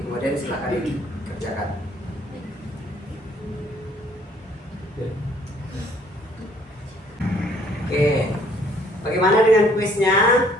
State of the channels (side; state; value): both; normal; correlation 0.61